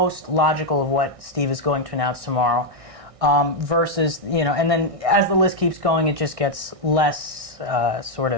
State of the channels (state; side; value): late; left; 1.6 ms